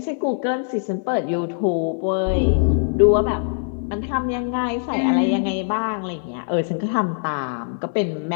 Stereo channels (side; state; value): right; silent; digital silence